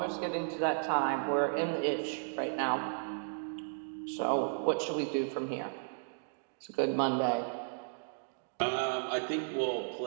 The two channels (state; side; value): silent; left; digital silence